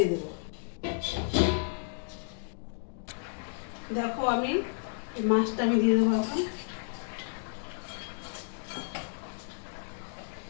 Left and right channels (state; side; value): silent; right; digital silence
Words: দেবো। দেখো আমি মাছটা আমি দিয়ে দেবো এখন,